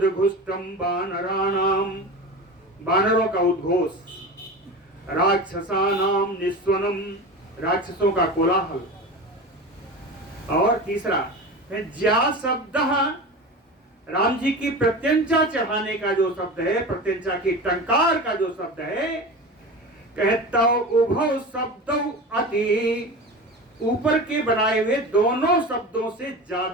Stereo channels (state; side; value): normal; both; correlation 0.30